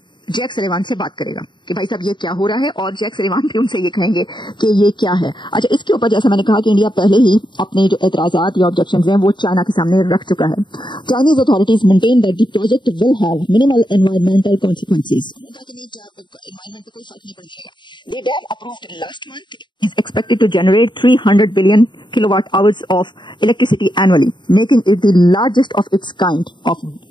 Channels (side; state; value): right; late; 0.22 ms